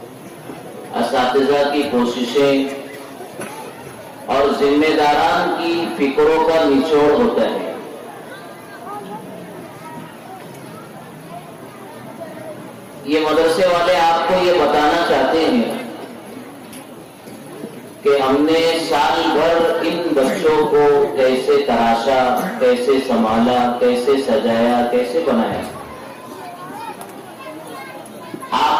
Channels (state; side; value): identical; both; correlation 1.00